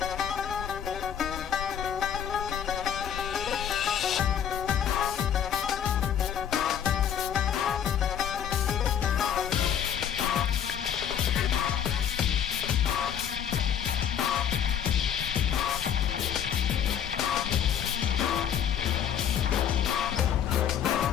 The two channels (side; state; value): right; quieter; 9.0 dB